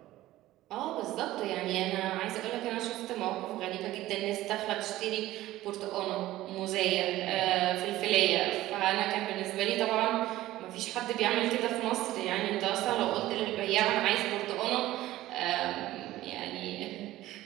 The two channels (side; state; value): left; quieter; 15.8 dB